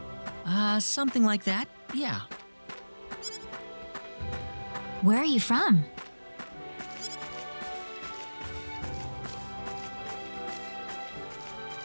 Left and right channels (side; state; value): both; inverted; correlation -1.00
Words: Something like that, yeah. Where are you from?